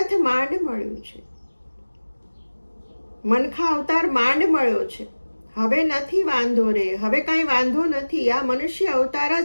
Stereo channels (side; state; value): both; inverted; correlation -1.00